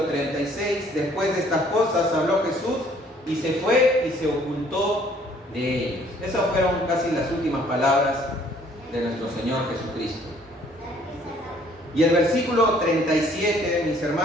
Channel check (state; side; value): normal; both; correlation 0.60